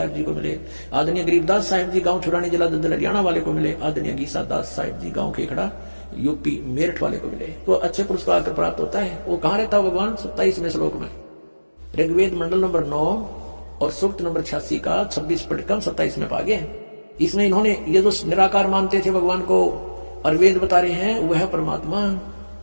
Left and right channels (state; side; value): inverted; both; correlation -1.00